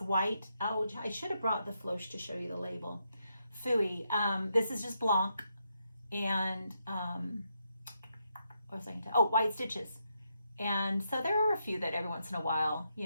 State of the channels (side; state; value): both; inverted; correlation -0.81